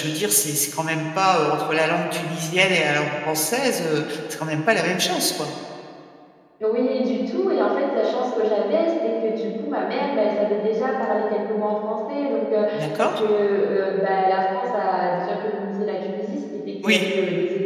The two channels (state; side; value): identical; both; correlation 1.00